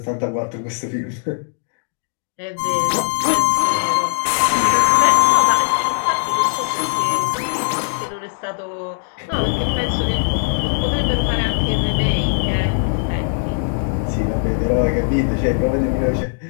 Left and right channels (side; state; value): right; silent; digital silence